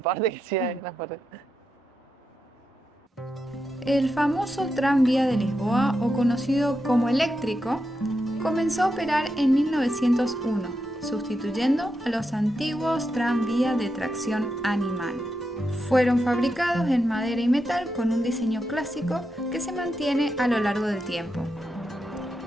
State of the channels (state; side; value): normal; both; correlation 0.86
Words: que sí hay en las paredes. El famoso tranvía de Lisboa, o conocido como eléctrico, comenzó a operar en 1901, sustituyendo a los antiguos tranvías de tracción animal. Fueron fabricados en madera y metal con un diseño clásico que se mantiene a lo largo del tiempo.